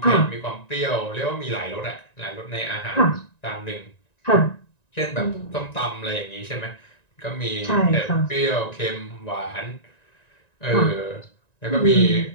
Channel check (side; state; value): right; late; 1.9 ms